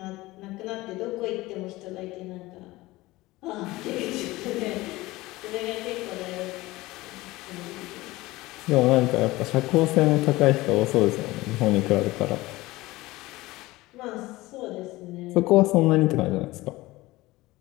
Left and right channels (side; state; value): right; quieter; 19.4 dB